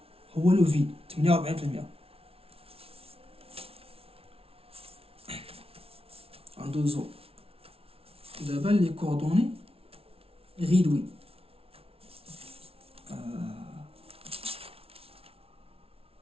هو لو فيد 48%. غندوزو دابا لي كوردوني غيدوي.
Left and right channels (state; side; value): late; left; 0.28 ms